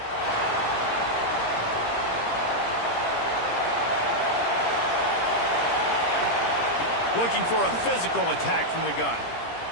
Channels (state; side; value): late; right; 17 ms